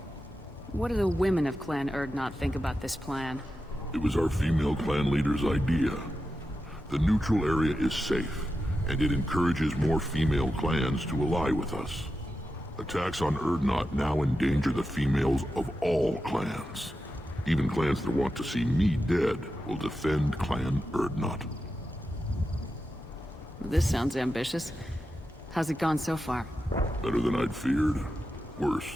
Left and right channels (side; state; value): both; normal; correlation 0.90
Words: What do the women of Clan Urdnot think about this plan? It was our female clan leader's idea. The neutral area is safe, and it encourages more female clans to ally with us. Attacks on Urdnot now endanger the females of all clans. Even clans that want to see me dead will defend Clan Urdnot. This sounds ambitious. How's it gone so far? Better than I'd feared. Worse